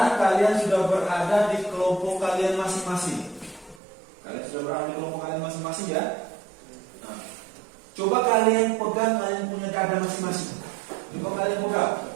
kalian sudah berada di kelompok kalian masing-masing. Kalian sudah berada di kelompok kalian masing-masing ya. Nah, coba kalian pegang, kalian punya dada masing-masing. Coba kalian pegang.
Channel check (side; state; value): left; drops out; at 3.8 s